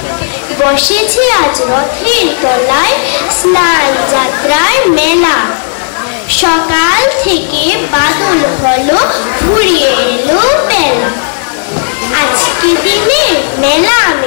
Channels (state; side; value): silent; right; 75 dB below the other